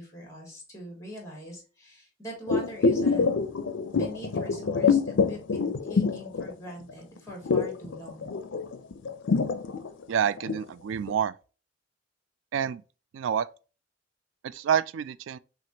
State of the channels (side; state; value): both; normal; correlation 0.01